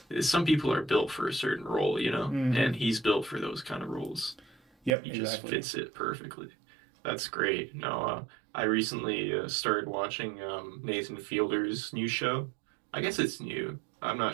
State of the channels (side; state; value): left; drops out; at 4.9 s